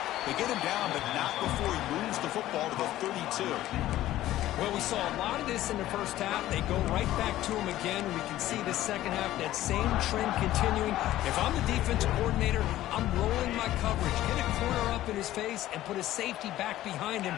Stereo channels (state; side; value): quieter; right; 14.4 dB